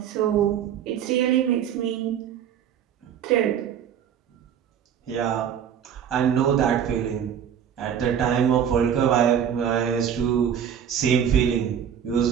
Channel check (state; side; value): quieter; left; 8.8 dB